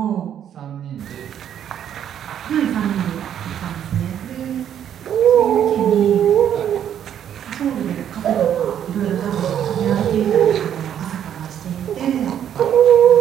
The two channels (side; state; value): left; quieter; 9.7 dB